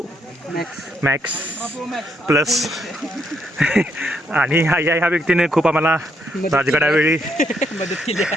मॅक्स प्लस. आणि ह्या व्यक्तीने खूप आम्हाला राजगडावेळी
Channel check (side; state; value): both; normal; correlation 0.75